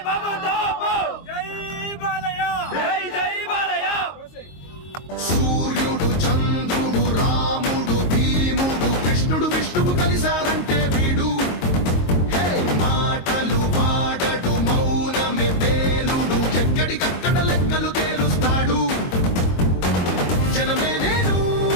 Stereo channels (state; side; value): late; right; 22 ms